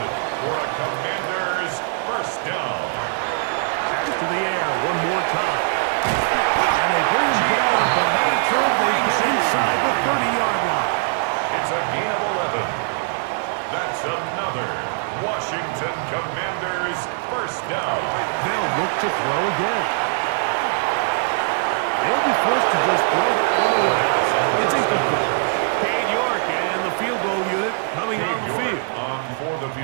for a Commanders first down. To the air one more time. And they bring him down, but not until they get inside the 30-yard line. It's a gain of 11. That's another Washington Commanders first down. They'll look to throw again. They'll be forced to just throw that one away. It's incomplete. Cade York and the field goal unit coming on the field.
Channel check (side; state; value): left; silent; 64 dB below the other